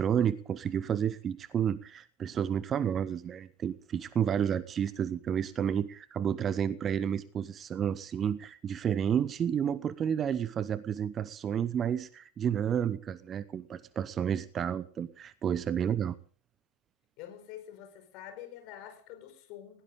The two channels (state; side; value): quieter; left; 8.2 dB